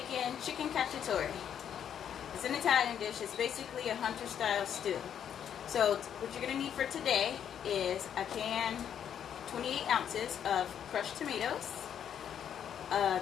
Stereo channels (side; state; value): right; quieter; 9.0 dB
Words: chicken cacciatore. It's an Italian dish. It's basically a hunter style stew. So what you're going to need for today is a can, 28 ounces of crushed tomatoes, a